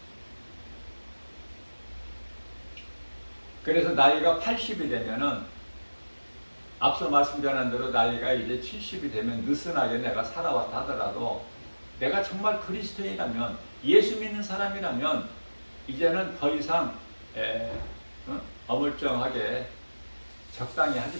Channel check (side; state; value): both; inverted; correlation -1.00